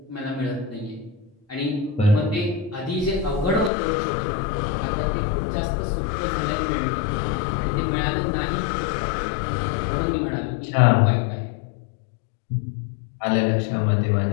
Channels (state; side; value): drops out; right; at 3.7 s